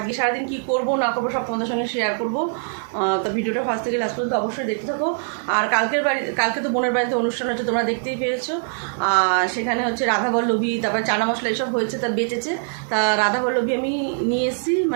সারাদিন কী করবো না করবো সব তোমাদের সঙ্গে শেয়ার করবো। তো ভিডিওটা ফার্স্ট থেকে লাস্ট পর্যন্ত অবশ্যই দেখতে থাকো। আর কালকে তো বোনের বাড়িতে অনুষ্ঠান হচ্ছে, তোমরা দেখতেই পেয়েছো। সেখানে হচ্ছে রাধাবল্লভী, তারপরে চানা মশলা এসব হয়েছে, তা বেঁচেছে। তা রাধাবল্লভী আমি নিয়ে এসেছি,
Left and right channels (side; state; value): left; silent; digital silence